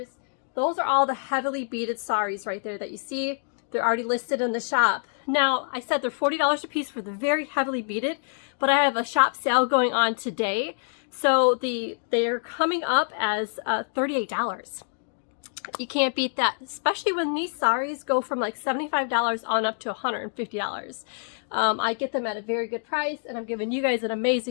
Those are all the heavily beaded saris right there that you see. They're already listed in the shop. Now, I said they're $40 a piece for the very heavily beaded, but I have a shop sale going on today. So they're coming up as $38. You can't beat that, especially when these saris go from like $75 on up to $150. I get them at a very good price, and I'm giving you guys an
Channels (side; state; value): right; silent; digital silence